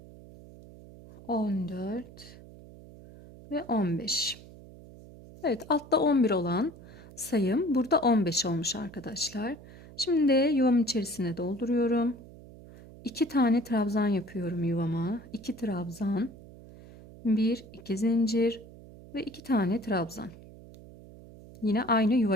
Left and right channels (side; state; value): right; noise; hum, 19 dB below the sound